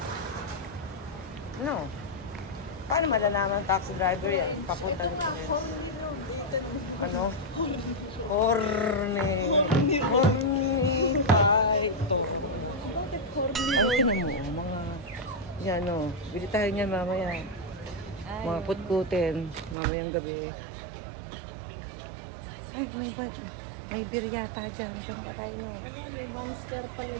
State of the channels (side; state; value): left; drops out; at 19.8 s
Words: No. Paano malalaman ng taxi driver yan? Papunta Ito nga, horny road. Dito naman. Ano? Horny. Horny. Ay, ito. Bakit horny Ang road? tinan mo, mga... Yan, no. Bili tayo niyan mamaya. Mga putkutin. Mamayang gabi. Ay, may beer yata dyan. Diyan ba kayo? May monster pala